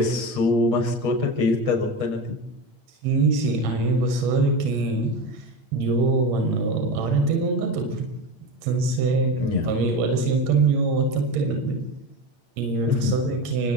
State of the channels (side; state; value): left; late; 8.8 ms